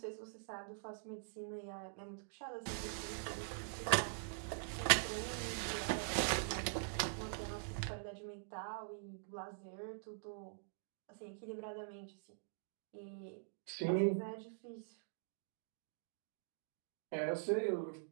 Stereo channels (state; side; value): silent; left; digital silence